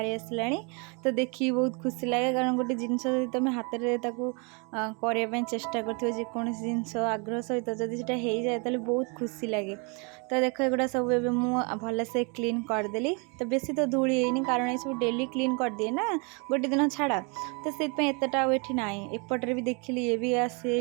आसला। तो देखिए बहुत खुशी लगे कारण गोटे जिनस तुम हाथ में करने चेष्टा करोसी जिनस आग्रह सहित जदि से हो जाए तो बहुत खुशी लगे। तो देख एगुड़ा सब भल से क्लीन करदेली। तो बेसी तो धूली है कारण ये सब डेली क्लीन कर दिए ना गोटे दिन छाड़ा। तो से एतटा ये ना एपटे भी देखिली ये भी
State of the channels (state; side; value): quieter; left; 33.1 dB